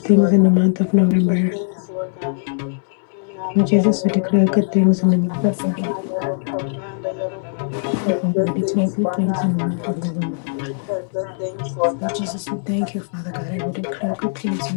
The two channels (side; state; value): right; silent; digital silence